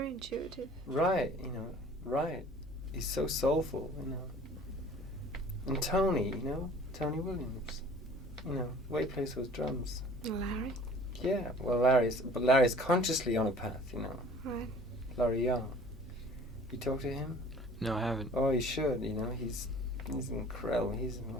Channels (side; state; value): both; normal; correlation 0.49